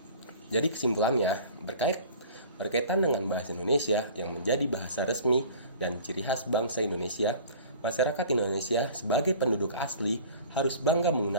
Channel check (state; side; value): inverted; both; correlation -0.45